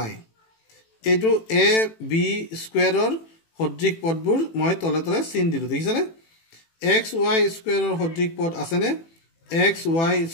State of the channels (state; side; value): late; right; 18 ms